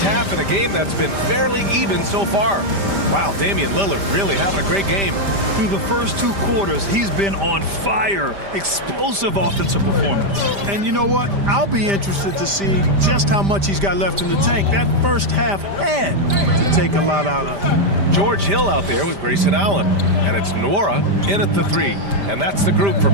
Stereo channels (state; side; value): late; left; 5.0 ms